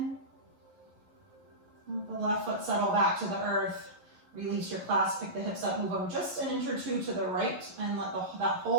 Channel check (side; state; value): left; late; 11 ms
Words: Let the left foot settle back to the earth. Release your clasp, pick the hips up, move them just an inch or two to the right, and let that